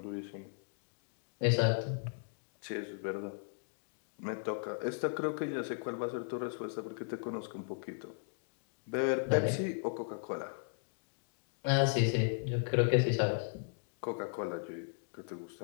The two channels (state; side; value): silent; right; digital silence